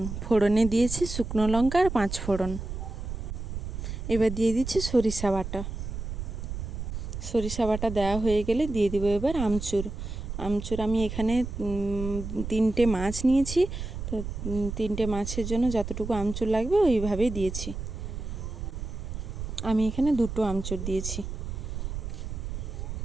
ফোড়নে দিয়েছি শুকনো লঙ্কা আর 5 ফোড়ন। এবার দিয়ে দিচ্ছি সরিষা বাটা। সরিষা বাটা দেওয়া হয়ে গেলে দিয়ে দিব এবার আমচুর। আমচুর আমি এখানে 3টে মাছ নিয়েছি, তো 3টে মাছের জন্য যতটুকু আমচুর লাগবে ওইভাবেই দিয়েছি। আমি এখানে 2টো আমচুর দিয়েছি।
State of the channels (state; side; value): noise; right; rumble, 6 dB below the sound